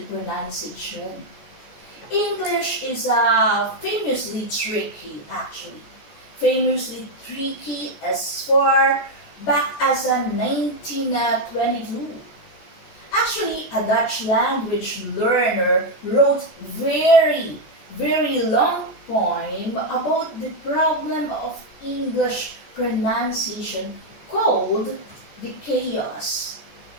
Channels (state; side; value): late; right; 14 ms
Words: pronunciation. English is famously tricky, actually. Famously tricky as far back as 1922. Actually, a Dutch language learner wrote very, very long poem about the problem of English pronunciation called the chaos.